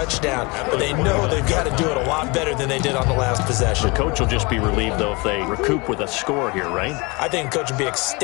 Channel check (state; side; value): quieter; right; 27.1 dB